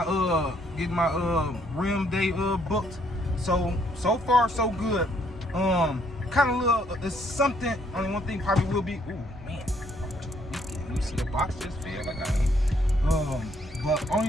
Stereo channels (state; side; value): normal; both; correlation 0.68